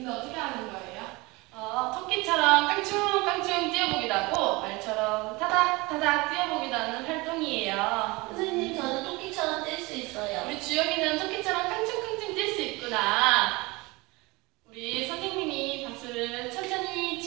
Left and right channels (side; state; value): left; quieter; 23.9 dB